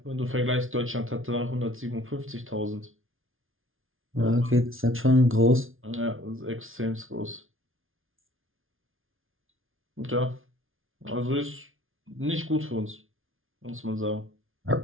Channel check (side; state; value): left; late; 0.59 ms